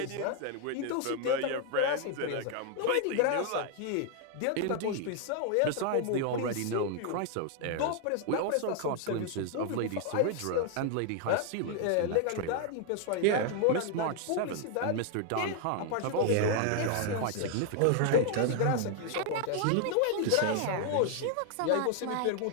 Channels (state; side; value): different; both; correlation 0.00